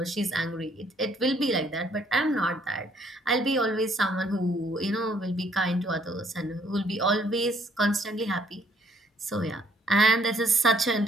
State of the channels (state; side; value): normal; both; correlation 0.65